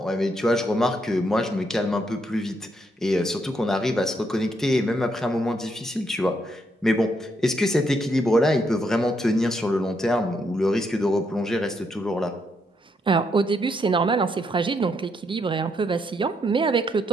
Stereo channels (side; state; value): both; normal; correlation 0.76